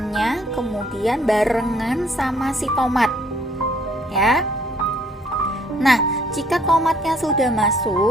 kemudian barengan sama si tomat ya. Nah, jika tomatnya sudah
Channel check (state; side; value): normal; both; correlation 0.63